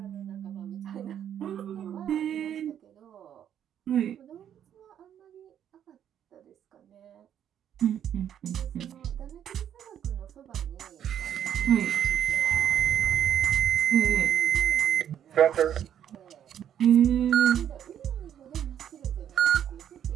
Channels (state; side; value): quieter; left; 9.8 dB